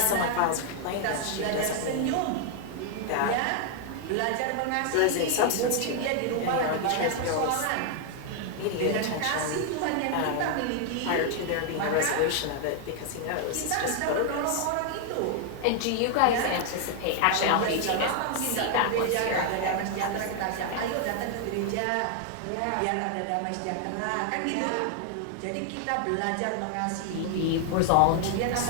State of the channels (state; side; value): different; both; correlation 0.00